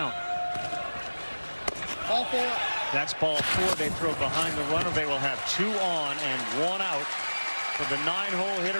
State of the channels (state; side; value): inverted; both; correlation -1.00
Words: Ball 4. That's ball 4. They throw behind the runner. They will have 2 on and 1 out for the 9-hole